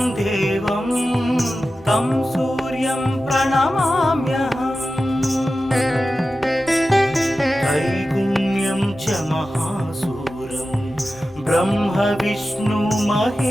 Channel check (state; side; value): normal; both; correlation 0.93